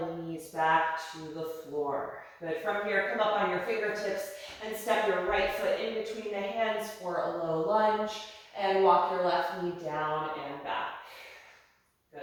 the knees back to the floor. Good, from here, come up on your fingertips and step your right foot in between the hands for a low lunge and walk your left knee down and back.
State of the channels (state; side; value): identical; both; correlation 1.00